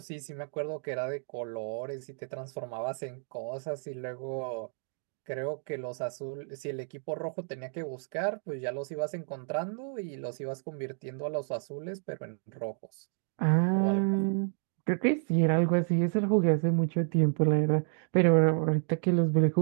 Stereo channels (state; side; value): silent; left; 57 dB below the other